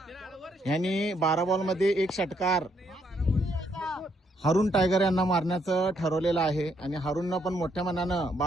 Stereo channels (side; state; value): both; normal; correlation 0.73